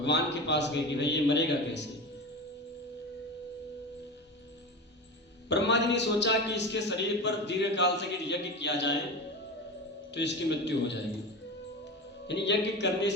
के पास गए कि भाई ये मरेगा कैसे। ब्रह्मा जी ने सोचा कि इसके शरीर पर दीर्घ काल से यज्ञ किया जाए तो इसकी मृत्यु हो जाएगी, यानी यज्ञ करने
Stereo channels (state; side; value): normal; both; correlation 0.26